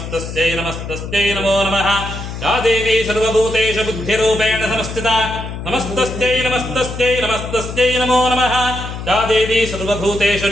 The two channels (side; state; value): left; noise; hum, 8 dB below the sound